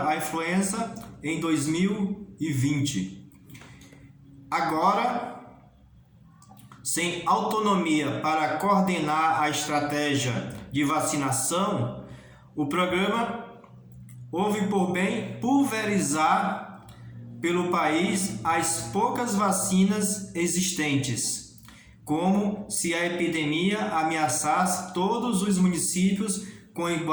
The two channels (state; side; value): identical; both; correlation 1.00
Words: a influenza em 2020. Agora, sem autonomia para coordenar a estratégia de vacinação, o programa houve por bem pulverizar pelo país as poucas vacinas existentes, como se a epidemia ameaçasse todos os municípios com